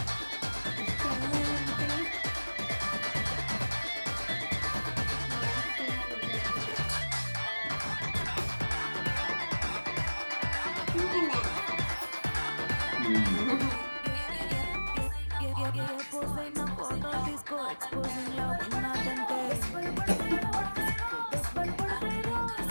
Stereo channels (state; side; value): inverted; both; correlation -1.00